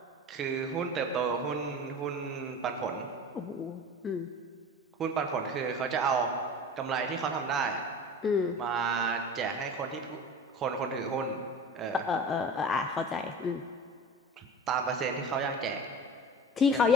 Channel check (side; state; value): both; normal; correlation 0.35